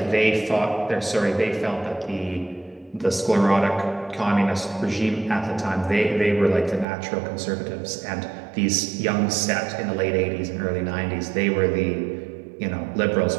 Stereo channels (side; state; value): left; drops out; at 6.9 s